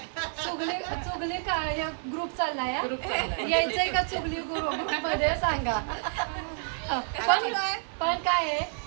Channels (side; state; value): left; silent; digital silence